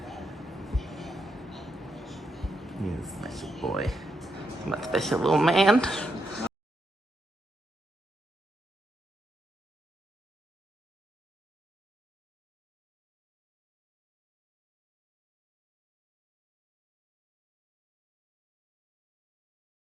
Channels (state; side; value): normal; both; correlation 0.82